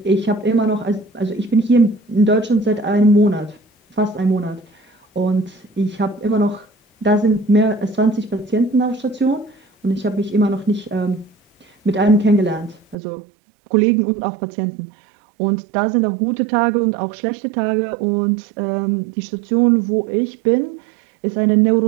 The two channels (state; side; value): drops out; left; at 13.0 s